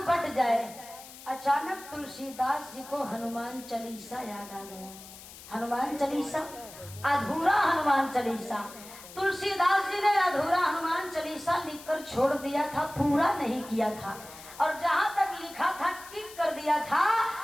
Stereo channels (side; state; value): left; noise; hiss, 17 dB below the sound